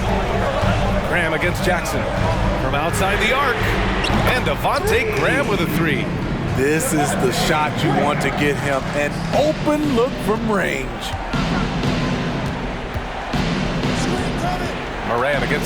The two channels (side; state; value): both; identical; correlation 1.00